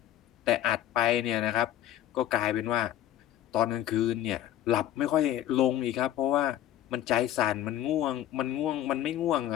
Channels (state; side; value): quieter; right; 12.5 dB